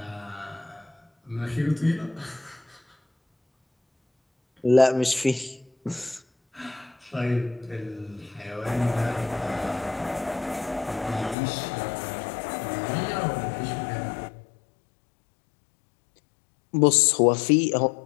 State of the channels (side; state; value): right; drops out; at 11.4 s